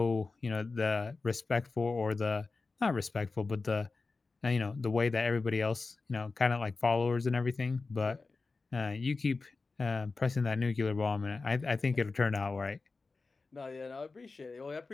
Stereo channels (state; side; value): quieter; right; 4.0 dB